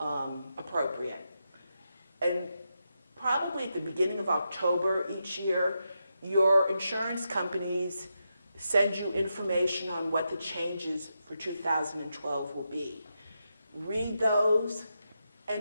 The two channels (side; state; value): both; inverted; correlation -0.85